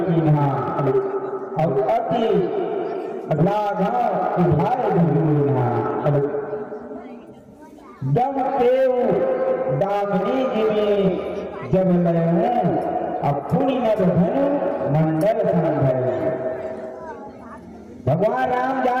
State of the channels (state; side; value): identical; both; correlation 1.00